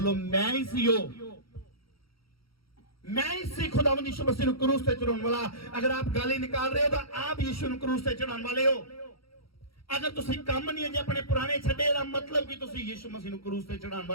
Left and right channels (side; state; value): right; late; 0.75 ms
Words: मैं ही सी हो, मैं ही सी खुदावंद यीशु मसीह नूं क्रूस ते चढ़ाउण वाला। अगर आप गाली निकाल रहे हो तो आप यीशु नूं क्रूस ते चढ़ाउण वाले हो। अगर तुसीं काम नहीं है जे अपने पुराने छड्डे दा मतलब कि तुसीं यीशु मसीह नूं क्रूस ते चढ़ाउण